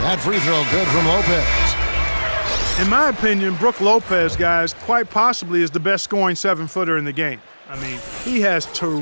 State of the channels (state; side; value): inverted; both; correlation -1.00